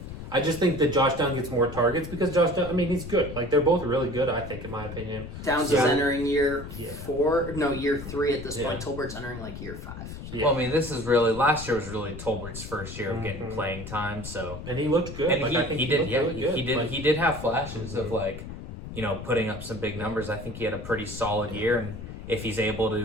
I just think that Josh Downs gets more targets because Josh Downs, I mean, he's good. Like, they're both really good, I think, in my opinion. Downs Yeah. is entering year Yeah. year 3 at this Yeah. point. Tolbert's entering like year 5. Yeah. Well, I mean, this is really last year was really Tolbert's first year of getting Mhm. playing time, so And he looked good. and like, I think he did looked yeah really good. he did Like, he did have flashes of Mhm. like, you know, putting up some big numbers. I think he had a pretty solid year, and if he's able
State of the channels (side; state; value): left; noise; rumble, 10 dB below the sound